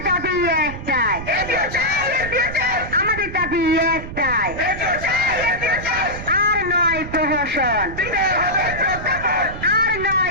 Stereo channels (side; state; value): right; noise; rumble, 10 dB below the sound